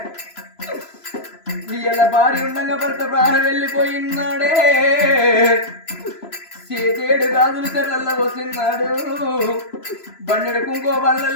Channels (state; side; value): late; right; 3.0 ms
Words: ఇయ్యల భార్య ఉండగా భర్త ప్రాణం వెళ్ళిపోయినాడే చేతేడు గాజులు తెల్లల్లో పోతున్నాడు బండెడు కుంకో